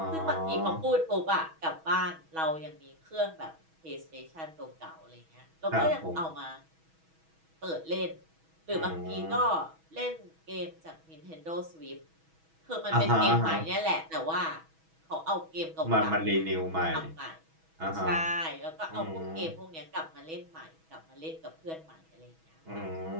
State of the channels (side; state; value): left; late; 6.2 ms